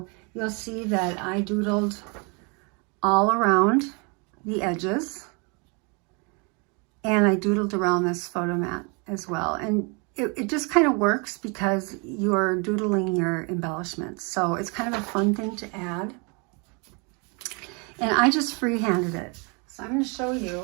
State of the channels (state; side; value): quieter; left; 32.5 dB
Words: you'll see that I doodled all around the edges, and I doodled around this photo mat as well. And it just kind of works because you're doodling your embellishments. So it's kind of a fun thing to add. And I just freehanded it. So I'm going to show